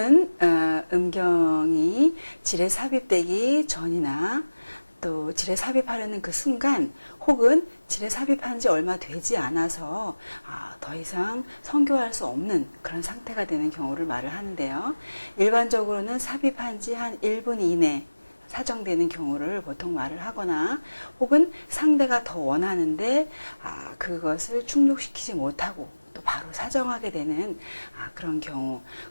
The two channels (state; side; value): inverted; both; correlation -1.00